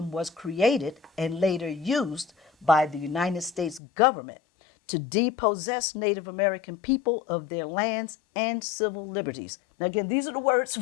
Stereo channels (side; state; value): right; drops out; at 3.8 s